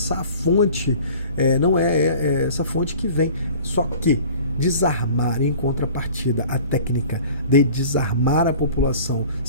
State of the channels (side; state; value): both; inverted; correlation -0.45